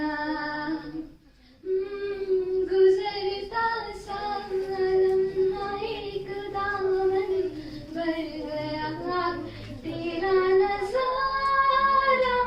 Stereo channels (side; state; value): both; identical; correlation 1.00